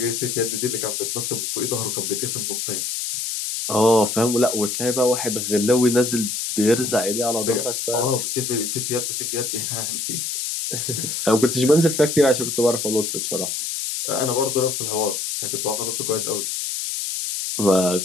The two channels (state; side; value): noise; left; hiss, 3 dB below the sound